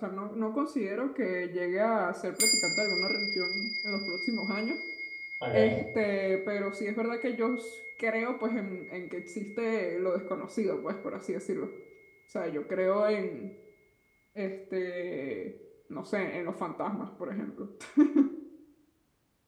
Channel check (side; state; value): both; identical; correlation 1.00